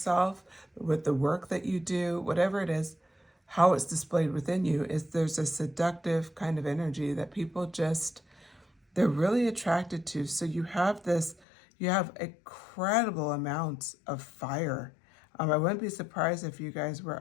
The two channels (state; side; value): drops out; right; at 11.4 s